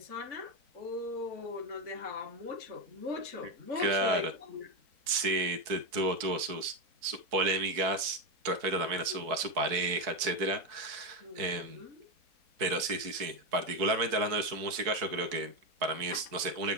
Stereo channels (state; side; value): late; left; 4.6 ms